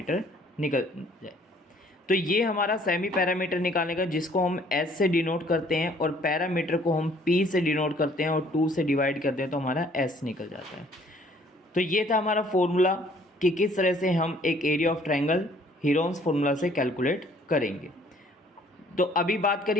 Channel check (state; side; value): normal; both; correlation 0.59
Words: निकल जाए। तो ये हमारा सेमी पैरामीटर निकालने का, जिसको हम एस से डिनोट करते हैं और पैरामीटर को हम पी से डिनोट करते हैं और 2 से डिवाइड करते हैं तो हमारा एस निकल जाता है। तो ये था हमारा फॉर्मूला कि किस तरह से हम एक area of triangle Heron's formula से कैलकुलेट करेंगे। तो अभी बात